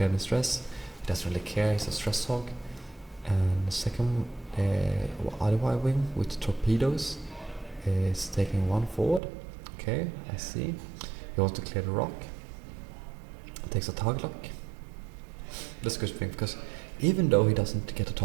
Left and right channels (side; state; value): left; drops out; at 9.2 s